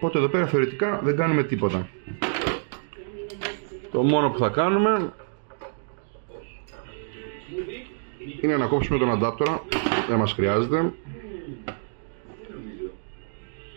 εδώ πέρα θεωρητικά δεν κάνουμε τίποτα. Το μόνο που θα κάνουμε είναι να κόψουμε τον αντάπτορα. Δεν μας χρειάζεται.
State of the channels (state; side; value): silent; left; digital silence